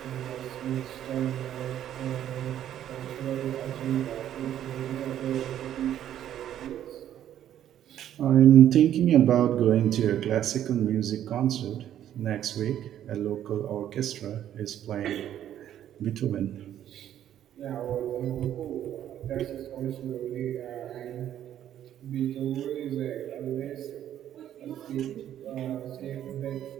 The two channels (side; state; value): left; quieter; 11.0 dB